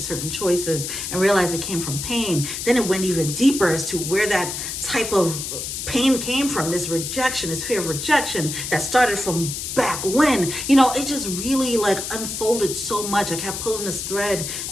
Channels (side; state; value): left; noise; hiss, 5 dB below the sound